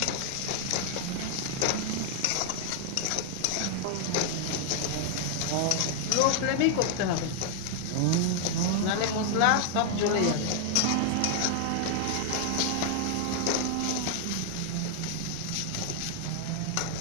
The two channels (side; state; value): both; different; correlation 0.00